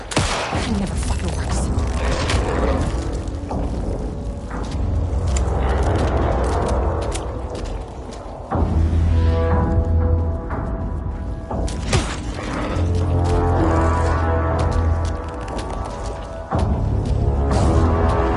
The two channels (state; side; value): identical; both; correlation 1.00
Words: never fucking works.